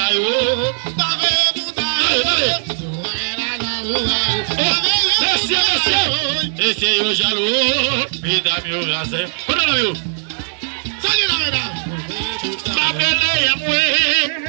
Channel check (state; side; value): silent; left; digital silence